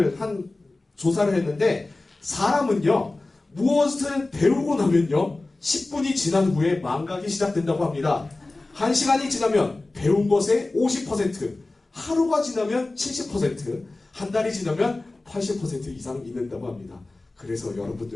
했는데 사람은요 무엇을 배우고 나면요 10분이 지난 후에 망각이 시작된다고 합니다. 1시간이 지나면 배운 것의 50%, 하루가 지나면 70%, 한 달이 지나면 80% 이상 잊는다고 합니다. 그래서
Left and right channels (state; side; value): quieter; right; 3.1 dB